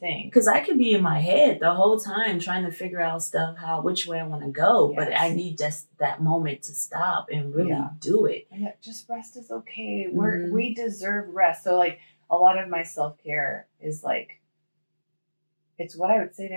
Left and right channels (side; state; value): both; inverted; correlation -1.00